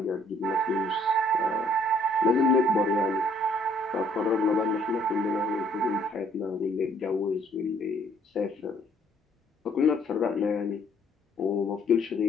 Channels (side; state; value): both; normal; correlation 0.63